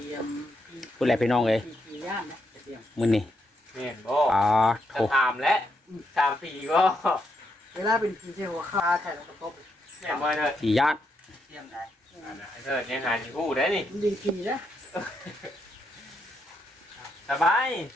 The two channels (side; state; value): both; normal; correlation 0.79